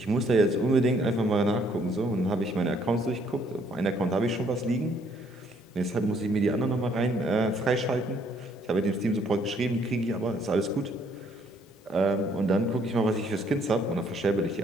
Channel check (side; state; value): both; normal; correlation 0.66